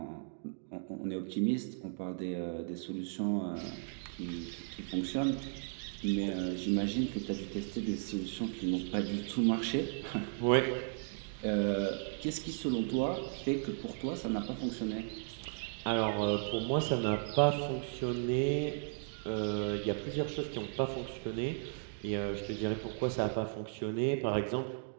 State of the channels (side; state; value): left; silent; digital silence